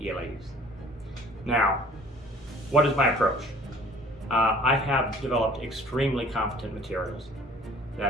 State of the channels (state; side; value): normal; both; correlation 0.51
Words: Now, what is my approach? I have developed extremely competent materials